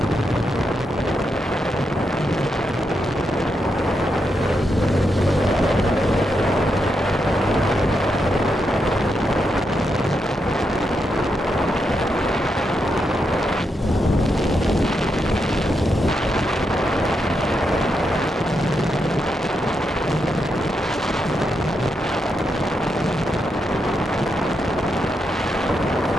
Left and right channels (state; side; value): normal; both; correlation 0.83